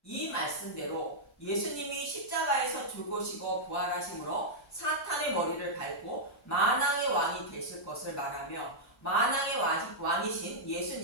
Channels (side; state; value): both; normal; correlation -0.07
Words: 이 말씀대로 예수님이 십자가에서 죽으시고 부활하심으로 사탄의 머리를 밟고 만왕의 왕이 되실 것을 말하며 만왕의 왕이신